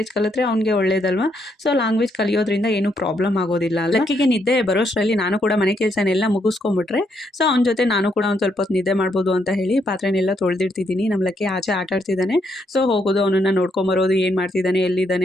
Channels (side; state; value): both; normal; correlation 0.76